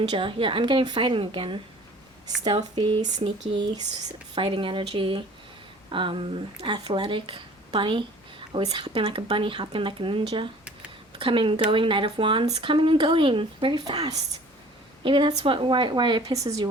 Yeah, I'm getting fighting again. Stealthy, sneaky, fighting energy. Athletic. Bunny. Always hopping like a bunny, hopping like a ninja. Coming and going, Knight of Wands. Coming and going. Very fast. Maybe that's why it pisses you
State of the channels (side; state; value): both; normal; correlation 0.49